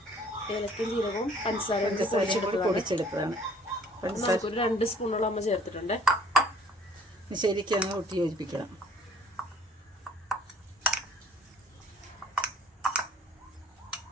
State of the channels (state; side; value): normal; both; correlation 0.56